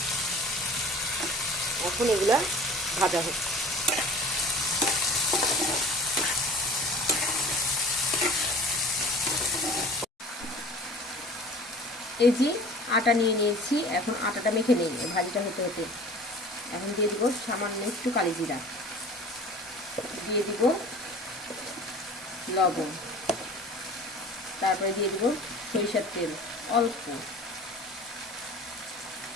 এখন এগুলা ভাজা হচ্ছে। এই যে আটা নিয়ে নিয়েছি, এখন আটাটা মেখে নিই ভাজিটা হতে হতে। এখন দিয়ে দিব সামান্য একটু কালি জিরা, দিয়ে দিব লবণ, তারপরে দিয়ে দিব সরিষার তেল অল্প,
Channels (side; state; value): both; normal; correlation 0.44